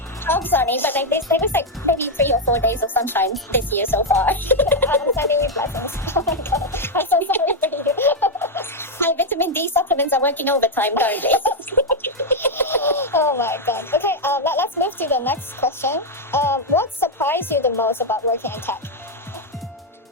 half sunny, but like there was like maybe 3 or 4 days of sunshine this year so far. I'm sending you blessings. Oh my god, I'm so sorry for you. My vitamin D supplements are working overtime currently. Oh my god. Okay, let's move to the next question. What surprised you the most about working in tech?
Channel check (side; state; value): both; normal; correlation 0.01